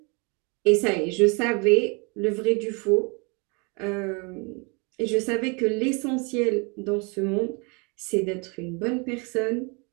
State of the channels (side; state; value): left; quieter; 31.7 dB